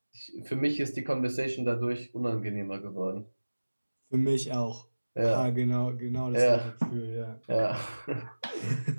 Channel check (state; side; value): inverted; both; correlation -1.00